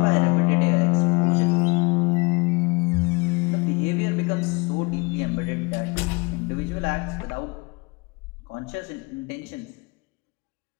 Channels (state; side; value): quieter; right; 27.3 dB